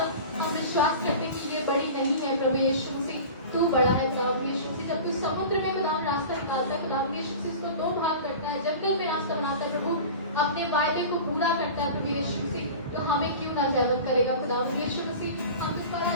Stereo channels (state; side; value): inverted; both; correlation -0.36